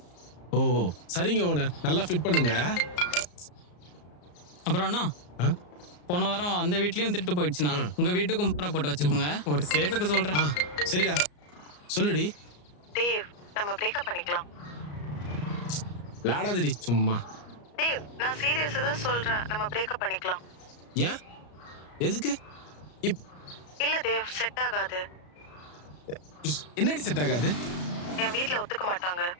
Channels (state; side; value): late; right; 34 ms